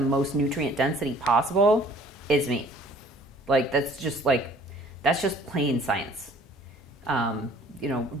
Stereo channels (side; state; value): both; normal; correlation 0.54